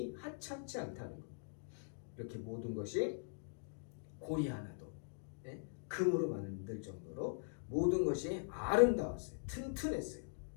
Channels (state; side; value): silent; right; digital silence